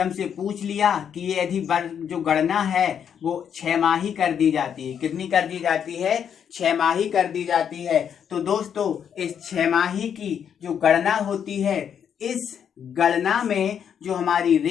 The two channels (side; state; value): right; quieter; 8.2 dB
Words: पूछ लिया कि ये यदि जो गणना है वो 6माही कर दी जाती है, कितनी कर दी जाती है? 6माही कर दी जाती है। तो दोस्तों इस 6माही की जो गणना होती है, इस गणना में जो हमारी